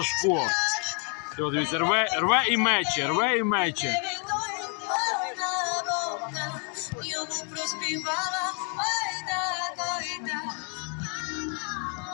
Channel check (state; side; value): quieter; right; 38.3 dB